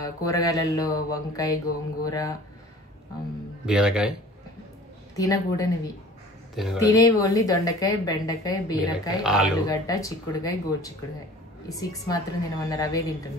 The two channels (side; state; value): both; normal; correlation 0.45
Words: కూరగాయలలో వంకాయ, గోంగూర, బీరకాయ తినకూడనివి. తినేవి ఓన్లీ దొండకాయ, బెండకాయ, బీరకాయ, ఆలుగడ్డ, చిక్కుడుకాయ, గోడు చిక్కుడుకాయ. ఈ 6 మాత్రం తినమన్నారు. అవే